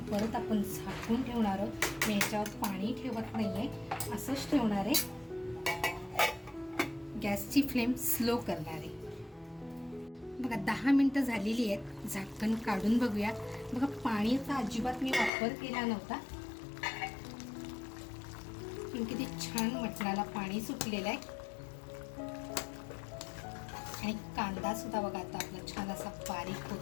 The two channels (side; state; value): right; drops out; at 15.3 s